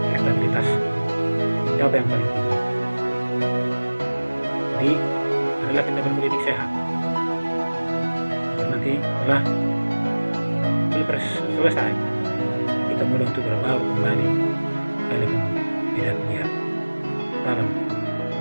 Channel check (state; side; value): inverted; both; correlation -1.00